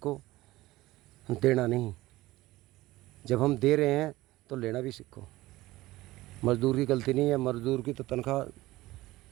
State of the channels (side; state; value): left; quieter; 18.1 dB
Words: देना नहीं। जब हम दे रहे हैं तो लेना भी सीखो। मज़दूर की गलती नहीं है, मज़दूर की तो तनख्वाह